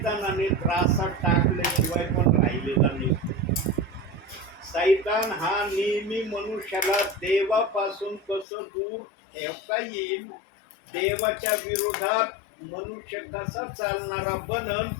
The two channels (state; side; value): drops out; right; at 8.5 s